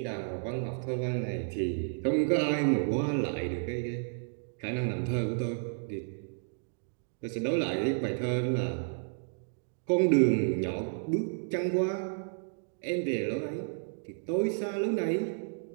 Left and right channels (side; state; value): left; silent; digital silence